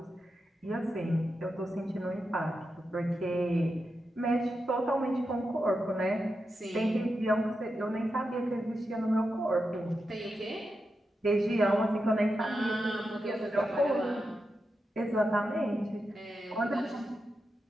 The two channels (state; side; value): normal; both; correlation 0.88